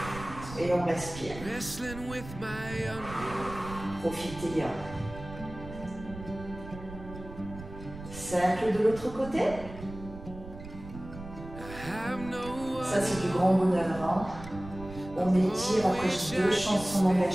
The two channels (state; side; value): noise; right; rumble, 13 dB below the sound